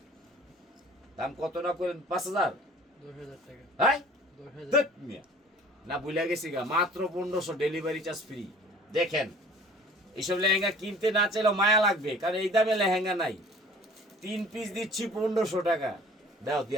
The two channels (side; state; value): both; normal; correlation 0.49